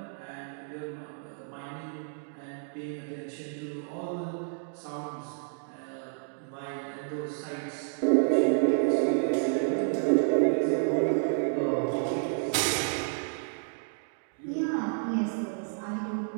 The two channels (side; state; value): left; silent; digital silence